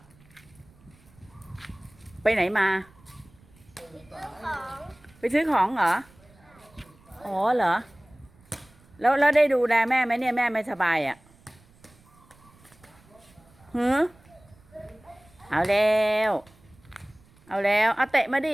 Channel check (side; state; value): right; noise; rumble, 28 dB below the sound